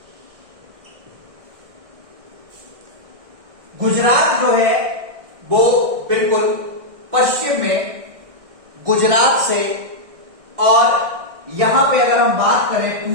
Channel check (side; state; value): left; late; 1.6 ms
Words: गुजरात जो है वो बिल्कुल पश्चिम में गुजरात से, और यहां पे अगर हम बात करें